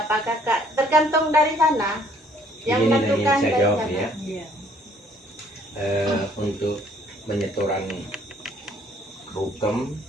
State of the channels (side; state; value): both; normal; correlation 0.61